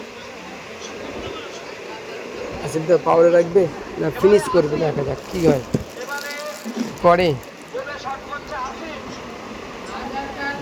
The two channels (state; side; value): identical; both; correlation 1.00